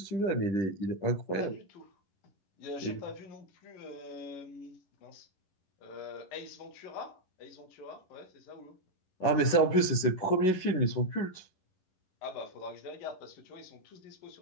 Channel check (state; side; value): late; right; 11 ms